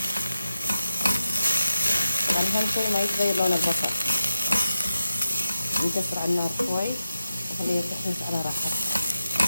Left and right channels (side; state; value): both; inverted; correlation -0.90